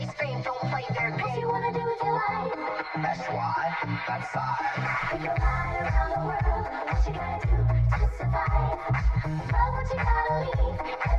fame, don't play their game. What you wanna do with your life? That's why, that's I. We can fly around the world, what you gotta do to survive? Love what you gotta leave,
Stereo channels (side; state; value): both; identical; correlation 1.00